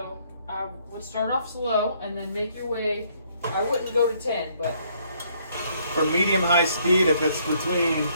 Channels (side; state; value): both; inverted; correlation -0.67